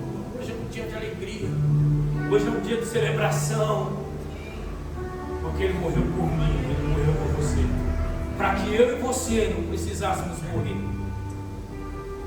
hoje é um dia de alegria. Hoje é um dia de celebração. Porque Ele morreu por mim, Ele morreu por você, para que eu e você não precisássemos morrer.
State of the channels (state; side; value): identical; both; correlation 1.00